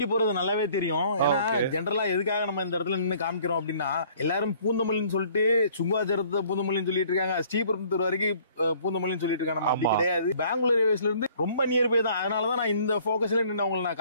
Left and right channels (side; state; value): both; inverted; correlation -0.57